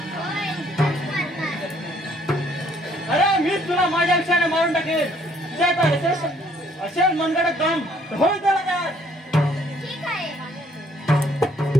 अरे मीच तुला माझ्या विषयाने मारून टाकेल. असेल मनगडत दम होईल त्याला काय. ठीक आहे.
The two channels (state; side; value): normal; both; correlation 0.63